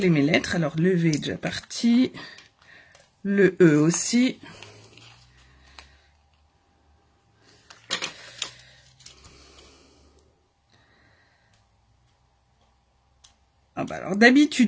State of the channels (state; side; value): identical; both; correlation 1.00